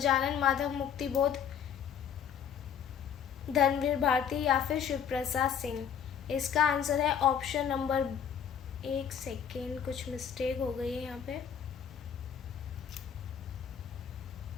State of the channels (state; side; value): quieter; right; 8.1 dB